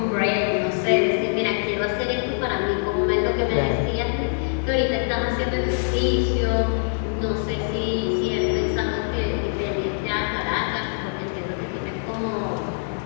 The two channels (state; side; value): silent; right; digital silence